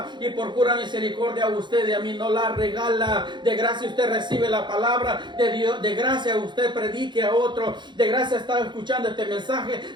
Y por pura misericordia a usted y a mí no la regala. De gracia usted recibe la palabra de Dios. De gracia usted predique a otro. De gracia está escuchando este mensaje.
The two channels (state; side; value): late; left; 0.22 ms